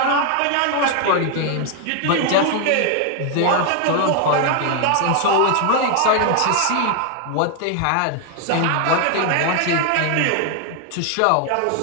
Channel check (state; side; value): different; both; correlation 0.00